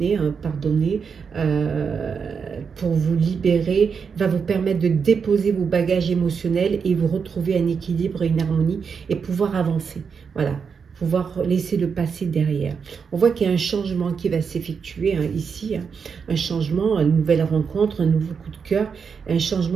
pour vous libérer, va vous permettre de déposer vos bagages émotionnels et vous retrouver un équilibre et une harmonie et pouvoir avancer. Voilà. Pouvoir laisser le passé derrière. On voit qu'il y a un changement qui va s'effectuer ici, un changement, une nouvelle rencontre, un nouveau coup de cœur, un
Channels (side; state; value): left; quieter; 6.1 dB